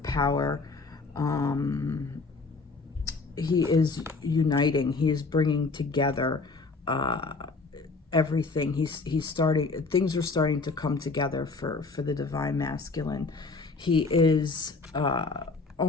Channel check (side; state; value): right; quieter; 4.0 dB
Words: power. He is uniting. He is bringing together everything. He's starting. Things are starting to come together for the Divine Masculine. He is